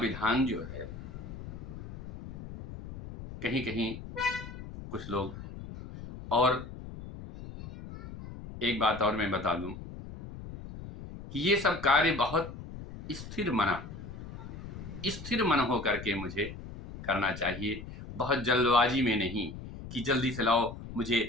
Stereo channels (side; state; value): left; noise; rumble, 11 dB below the sound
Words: जो है, कहीं कहीं कुछ लोग, और एक बात और मैं बता दूं कि ये सब कार्य बहुत स्थिर मन हो करके मुझे करना चाहिए, बहुत जल्दबाजी में नहीं कि जल्दी से लाओ, मुझे